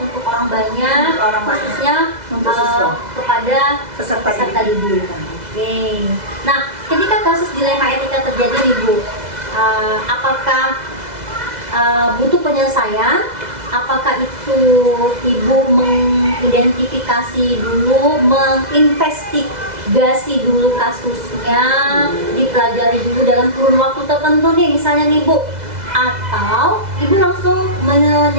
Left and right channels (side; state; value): left; late; 2.0 ms